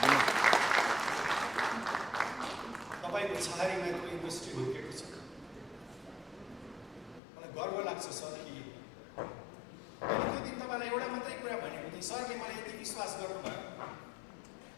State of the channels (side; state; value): right; drops out; at 7.2 s